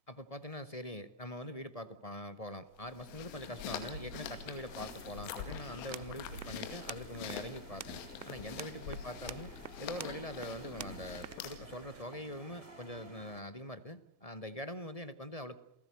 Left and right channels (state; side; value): late; right; 1.7 ms